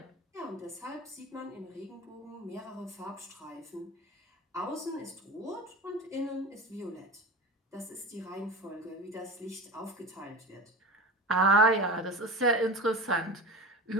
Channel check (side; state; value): both; normal; correlation 0.30